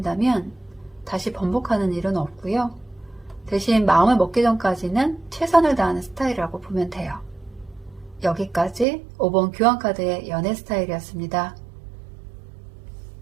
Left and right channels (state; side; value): drops out; left; at 8.8 s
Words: 다시 번복하는 일은 없고요. 대신 마음을 먹기 전까지는 최선을 다하는 스타일이라고 보면 돼요. 여기까지 5번 교환카드의 연애 스타일이었습니다.